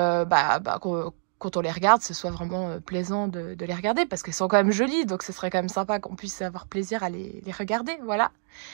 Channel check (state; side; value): silent; left; digital silence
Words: quand on les regarde, ce soit vraiment plaisant de les regarder parce qu'elles sont quand même jolies, donc ce serait quand même sympa qu'on puisse avoir plaisir à les regarder, voilà.